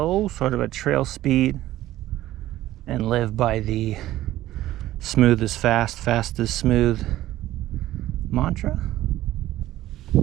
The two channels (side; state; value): left; quieter; 14.8 dB